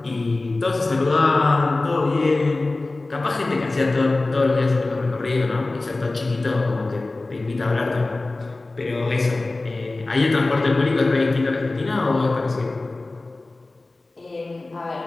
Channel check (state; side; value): quieter; right; 3.1 dB